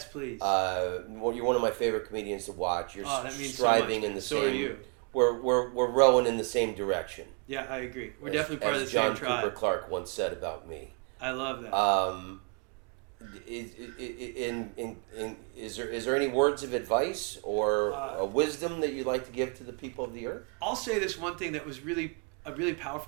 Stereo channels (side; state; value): left; quieter; 38.2 dB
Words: please. You're one of my favorite comedians to watch. You're that means so much, man. So are you. We're rowing in the same direction. Yeah, I agree. We're definitely part of the same tribe. John Cooper Clarke once said about me. I love that. Is there any words of advice or a wisdom that you'd like to give to the people of the earth? I'll say this one thing that was a really